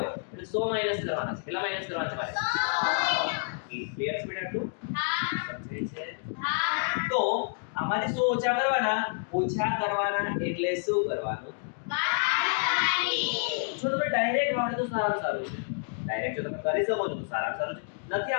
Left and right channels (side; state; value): right; silent; digital silence